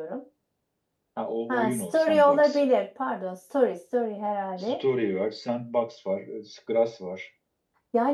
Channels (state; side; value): identical; both; correlation 1.00